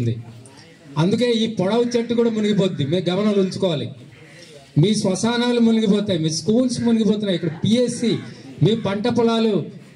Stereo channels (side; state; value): both; identical; correlation 1.00